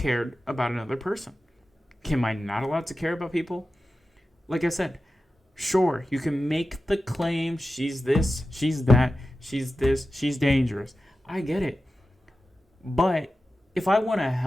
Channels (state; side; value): normal; both; correlation 0.93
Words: about another person. Am I not allowed to care about people? Like I said, sure, you can make the claim she's this, she's that, she's this, she's dangerous. I get it. But if I want to